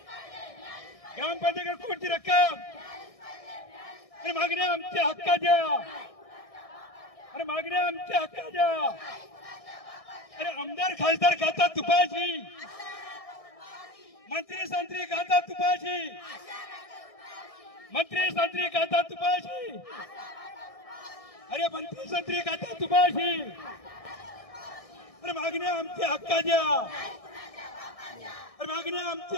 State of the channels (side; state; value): right; late; 1.6 ms